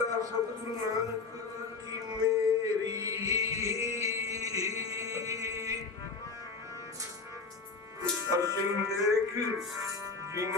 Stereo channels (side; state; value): right; quieter; 4.4 dB